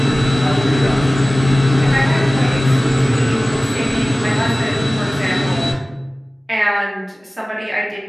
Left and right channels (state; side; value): normal; both; correlation 0.98